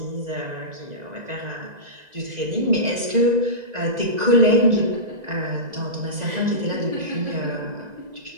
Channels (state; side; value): late; left; 1.9 ms